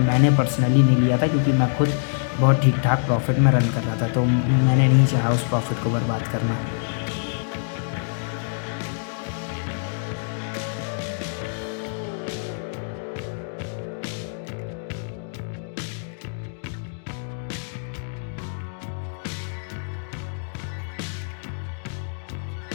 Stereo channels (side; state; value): right; silent; digital silence